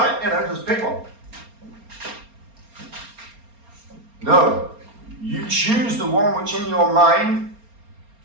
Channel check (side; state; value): left; late; 4.3 ms